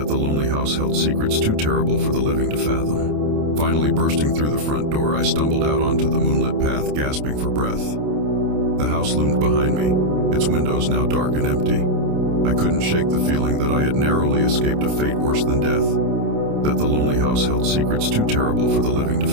the lonely house held secrets too terrible for the living to fathom. Finally bursting through the front door, I stumbled out onto the moonlit path, gasping for breath. The house loomed behind me, its windows now dark and empty. I couldn't shake the feeling that I had narrowly escaped a fate worse than death, that the lonely house held secrets too terrible for the living to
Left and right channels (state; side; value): late; left; 28 ms